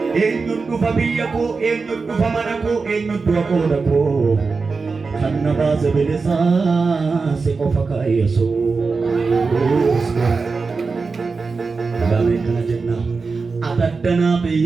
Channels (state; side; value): quieter; left; 4.4 dB